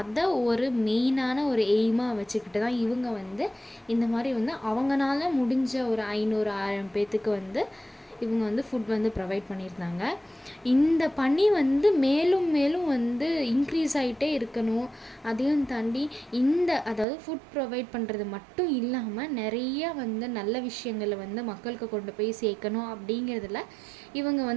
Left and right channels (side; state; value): left; drops out; at 17.1 s